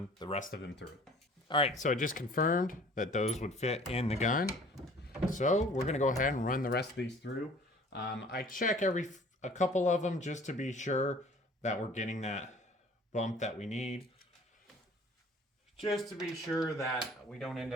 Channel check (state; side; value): normal; both; correlation 0.50